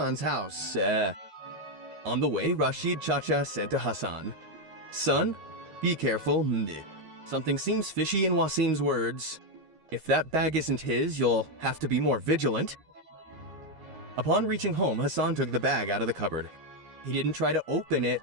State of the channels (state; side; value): late; left; 13 ms